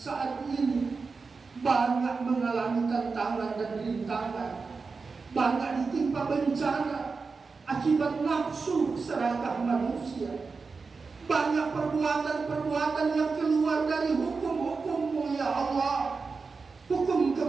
ini banyak mengalami tantangan dan rintangan, banyak ditimpa bencana akibat nafsu serakah manusia, banyak perbuatan-perbuatan yang keluar dari hukum-hukum-Mu ya Allah, hukum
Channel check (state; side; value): quieter; left; 4.6 dB